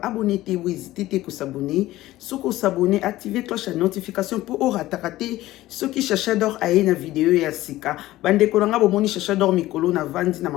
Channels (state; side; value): quieter; right; 16.3 dB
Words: abonné te ou hésiter te ko s'abonner. Soko s'abonner, activer cloche de notification pour rater ce qui Chacha d'Or a na vidéo ya sika. Bande konanga bomoni Chacha d'Or mikolo na vandi na